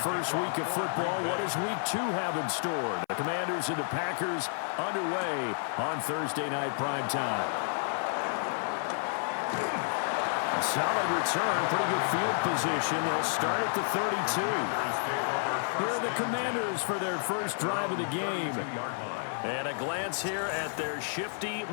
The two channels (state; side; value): silent; right; 56 dB below the other